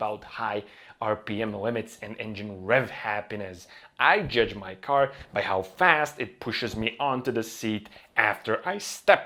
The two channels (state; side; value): identical; both; correlation 1.00